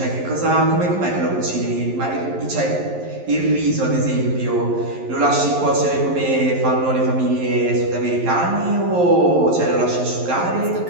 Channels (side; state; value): left; late; 11 ms